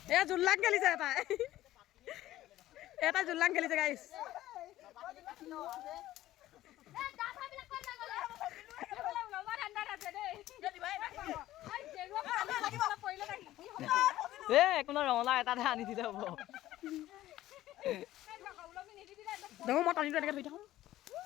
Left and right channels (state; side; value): quieter; right; 14.7 dB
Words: এয়া জোল্লাক খেলিছে তাই এটা জুললাং খেলিছে গাইছ একো নহয় ৰঙালাও এটাহে আনি দিলে হ'ব দেখো মই টানিটো এনেকৈ ধৰি থাকোঁ